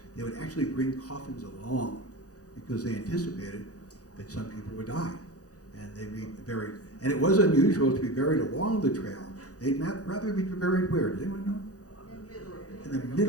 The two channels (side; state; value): right; late; 0.67 ms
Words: they would actually bring coffins along because they anticipated that some people would die. And they'd be buried. And it was unusual to be buried along the trail. They'd rather be buried where? Does anyone know? In the